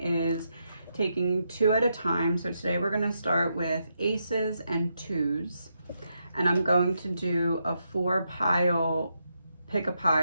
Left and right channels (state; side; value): inverted; both; correlation -0.82